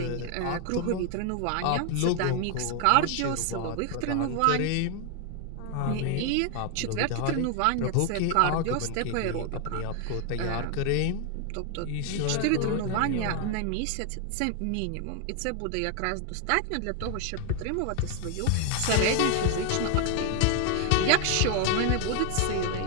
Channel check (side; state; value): both; different; correlation 0.00